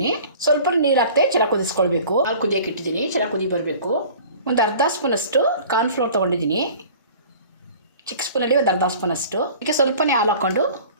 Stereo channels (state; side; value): inverted; both; correlation -0.45